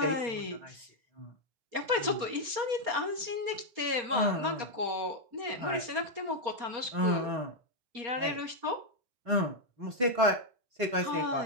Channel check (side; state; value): left; late; 4.3 ms